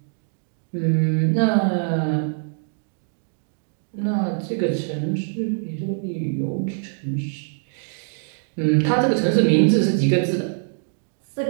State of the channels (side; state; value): left; silent; digital silence